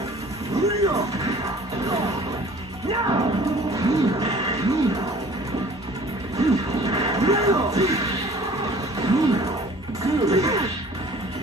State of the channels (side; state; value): both; normal; correlation 0.49